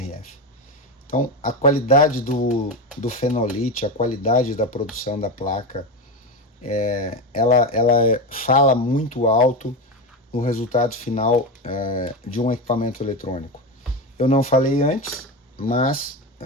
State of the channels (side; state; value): both; normal; correlation 0.17